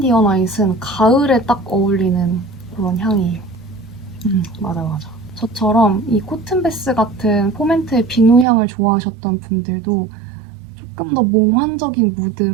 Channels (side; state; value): left; drops out; at 8.5 s